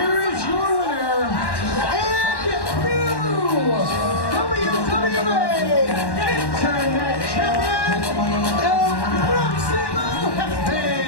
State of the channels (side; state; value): right; late; 1.1 ms